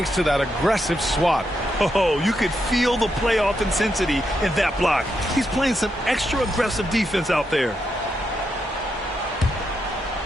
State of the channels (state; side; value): normal; both; correlation 0.82